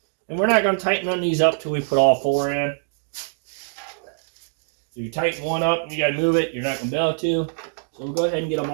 And we're not going to tighten none of these up till we put all four in. If you tighten one up and you got to move it, you're not going to be able to. So we'll go ahead and get them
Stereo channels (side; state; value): left; silent; digital silence